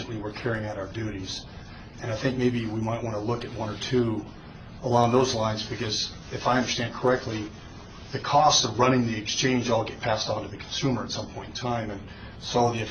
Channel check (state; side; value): identical; both; correlation 1.00